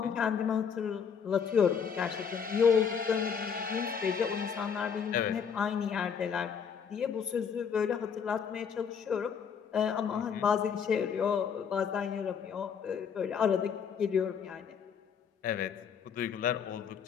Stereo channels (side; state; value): right; quieter; 6.9 dB